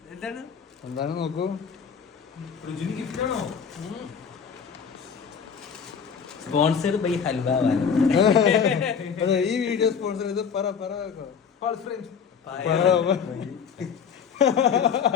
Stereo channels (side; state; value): right; quieter; 6.8 dB